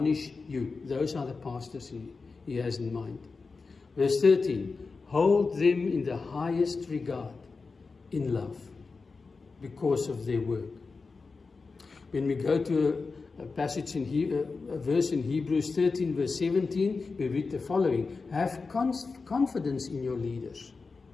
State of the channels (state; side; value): quieter; right; 4.3 dB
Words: you. Those are the pastors he has in mind. Verse 13, hold them in the highest regard, in love, because of their work. When we go to a passage a verse in Hebrews 13, verse 17, we read the following. Have confidence in your leaders.